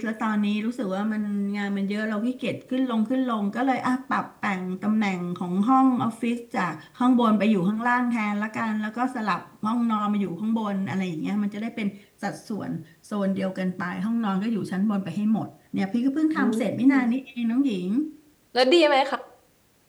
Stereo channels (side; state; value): both; identical; correlation 1.00